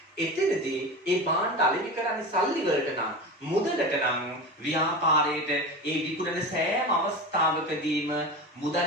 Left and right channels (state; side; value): normal; both; correlation 0.27